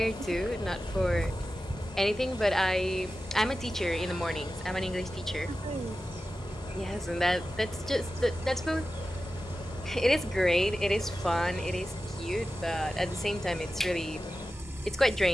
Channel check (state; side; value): normal; both; correlation 0.94